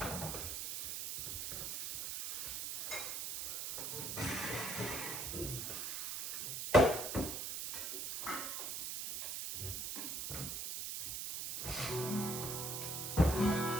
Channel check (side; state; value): right; noise; hiss, 3 dB below the sound